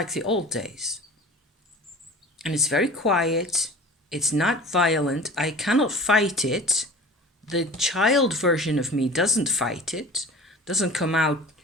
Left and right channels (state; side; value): normal; both; correlation 0.40